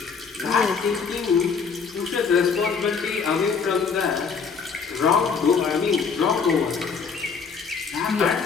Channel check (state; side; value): quieter; right; 5.6 dB